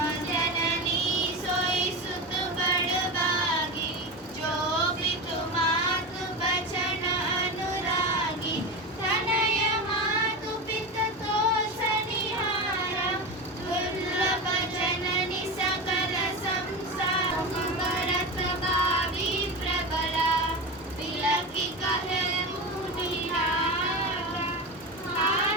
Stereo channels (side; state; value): both; normal; correlation 0.22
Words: जननी सोई सुत बड़ बागी जो भी तुमातु बचन अनुरागी तनय मातु पित तो सनिहारा दुर्लभ जननी सकल संसार भरत भावी प्रबला तिलकी कहे मुनिहारा